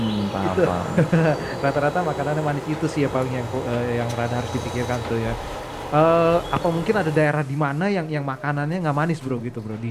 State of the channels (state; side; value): identical; both; correlation 1.00